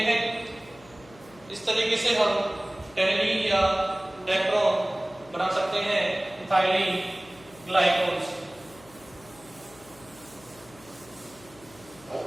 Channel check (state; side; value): noise; left; hum, 23 dB below the sound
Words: हैं। इस तरीके से हम टेरिडीन या डेक्टरॉन बना सकते हैं इथाइलीन ग्लाइकोल से।